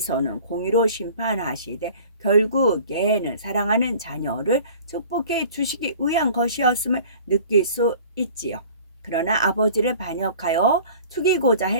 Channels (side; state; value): both; inverted; correlation -0.46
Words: 공의로 심판하시되 결국에는 사랑하는 자녀를 축복해 주시기 위한 것이었음을 느낄 수 있지요. 그러나 아버지를 반역하여 죽이고자